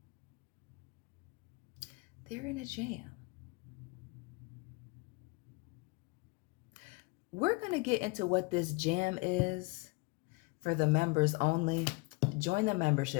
They're in a jam. We're going to get into what this jam is for the members only. Join the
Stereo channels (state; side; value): quieter; right; 27.4 dB